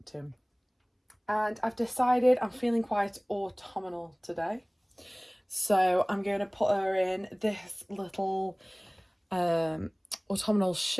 to. And I've decided I'm feeling quite autumnal today, so I'm going to put her in this little autumnal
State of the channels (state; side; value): identical; both; correlation 1.00